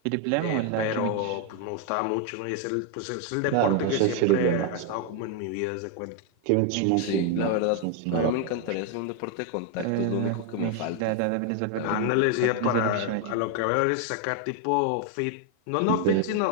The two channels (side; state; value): both; different; correlation 0.00